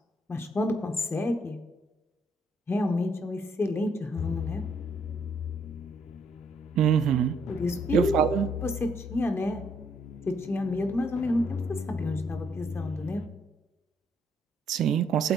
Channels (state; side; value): normal; both; correlation 0.70